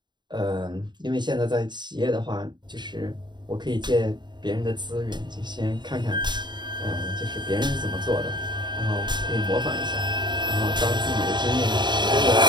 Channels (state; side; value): late; left; 0.22 ms